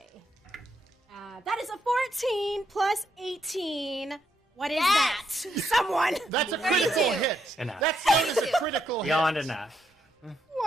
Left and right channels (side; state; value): both; normal; correlation 0.78